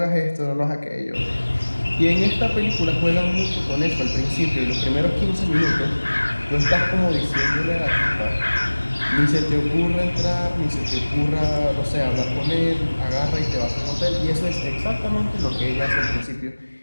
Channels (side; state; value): both; inverted; correlation -1.00